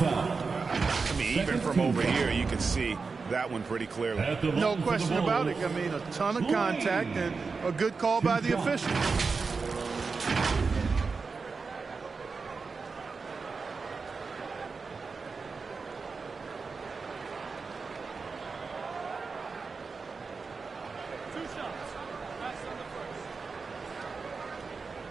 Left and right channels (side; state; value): left; quieter; 4.7 dB